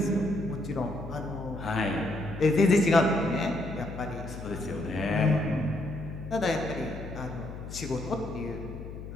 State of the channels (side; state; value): left; noise; hum, 10 dB below the sound